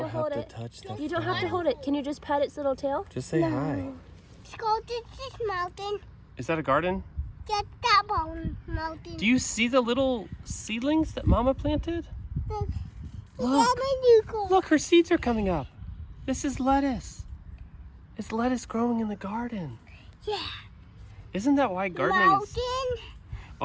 don't hold have it. to touch the You don't have to hold it. Can you just pet its little tail? Just say hi. Let's go to this mountain. Is that a garden? Get that mountain. Do you see the little seedlings that Mama planted? Look. Look. Look, her seeds are coming up. This is lettuce. It's lettuce growing in the garden. Yeah. Isn't that why gardening is... Mountain.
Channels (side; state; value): both; identical; correlation 1.00